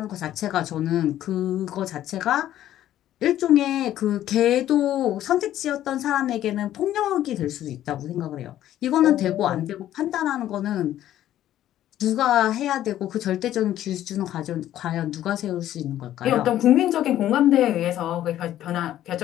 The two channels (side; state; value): right; quieter; 12.5 dB